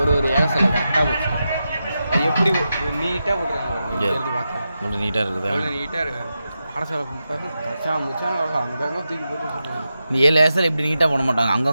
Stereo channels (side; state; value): both; inverted; correlation -0.89